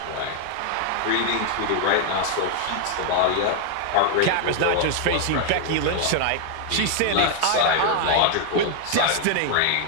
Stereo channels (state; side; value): different; both; correlation 0.00